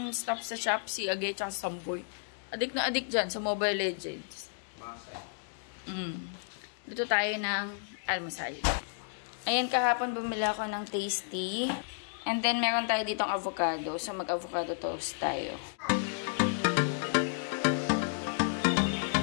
staff sa shop, si Age at Samboy. Adik na adik dyan sa Mobile Legends. Luto tayo ng almusal. Ayan, kahapon bumili ako ng tasty. And then, meron tayo ditong avocado. So, mag-avocado toast tayo.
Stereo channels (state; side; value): silent; right; digital silence